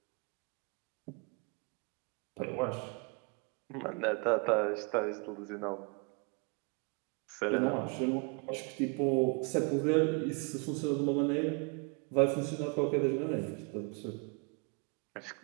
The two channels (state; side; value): quieter; left; 34.2 dB